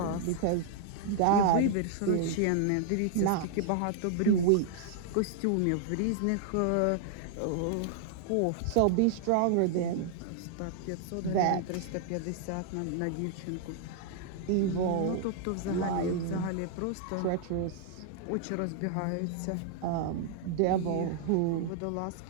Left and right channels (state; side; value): different; both; correlation -0.01